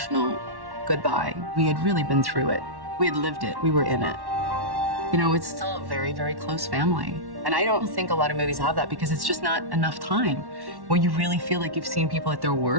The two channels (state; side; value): late; left; 1.1 ms